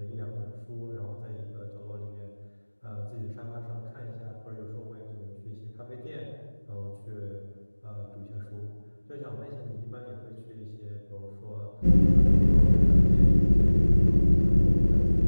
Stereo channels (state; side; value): inverted; both; correlation -1.00